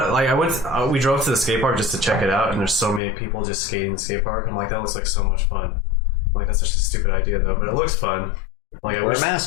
We drove to the skate park just to check it out, and there's so many people just skating the skate park. I'm like, that looks like so much fun. I'm like, that's such a stupid idea though, but it looks fun. Like, wear a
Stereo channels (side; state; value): right; drops out; at 3.0 s